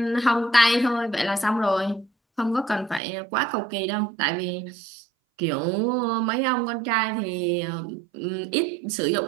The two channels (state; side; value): drops out; left; at 3.0 s